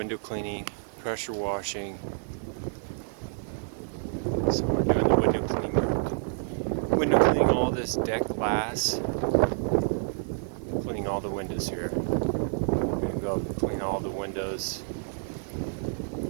cleaning, pressure washing. So we're doing the window cleaning work. Window cleaning all this deck glass. Cleaning all the windows here. We're going to go up and clean all the windows.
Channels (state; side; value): silent; left; 59 dB below the other